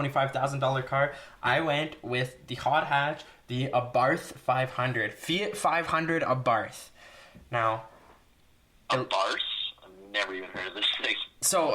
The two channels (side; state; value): both; identical; correlation 1.00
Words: car, I went with the hot hatch, the Abarth 500. Fiat 500 Abarth. Now... Abarth? I've never even heard of this thing.